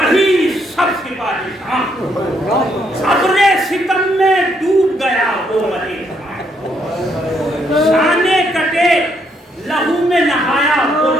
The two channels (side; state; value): both; normal; correlation 0.73